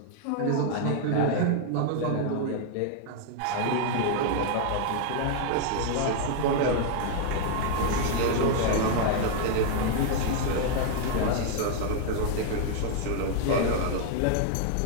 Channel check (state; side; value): different; both; correlation 0.00